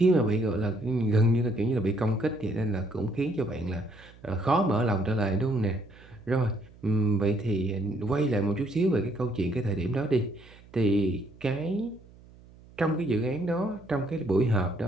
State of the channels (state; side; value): noise; right; hum, 23 dB below the sound